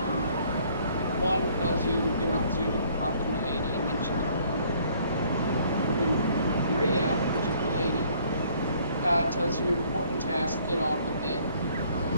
One tells you you're not suited to talk to my lady, and then she goes. And then Maria, which is the lady, tells you important task, get on with it.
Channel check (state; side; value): inverted; both; correlation -0.61